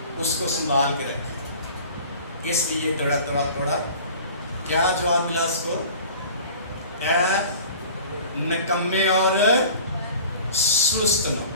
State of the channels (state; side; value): inverted; both; correlation -0.43